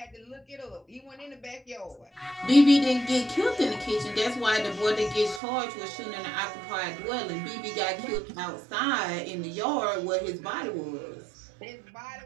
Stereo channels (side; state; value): left; drops out; at 5.4 s